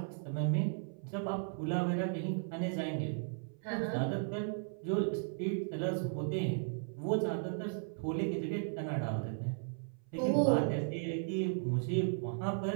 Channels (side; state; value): left; silent; 54 dB below the other